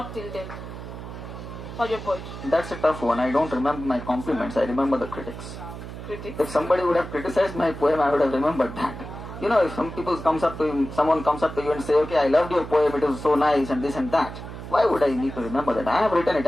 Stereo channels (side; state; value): right; noise; hum, 11 dB below the sound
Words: till date for your poetry? That's a tough one. I don't remember my compliments. I remember the critics. If somebody would have criticized my poem, I would have remembered that. If someone comes up to you and say, okay, I loved your poem, it was so nice and this and that. Why would I need to remember that? I have written it,